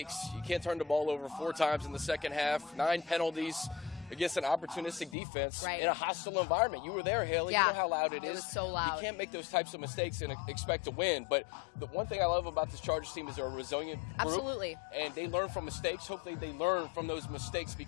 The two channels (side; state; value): right; drops out; at 5.2 s